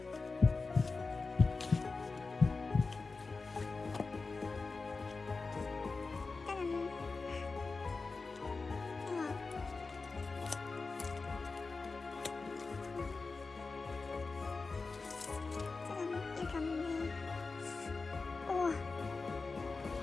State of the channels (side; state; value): right; quieter; 4.1 dB